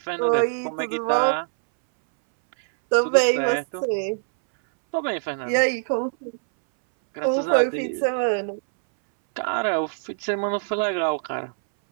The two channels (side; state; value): left; silent; 62 dB below the other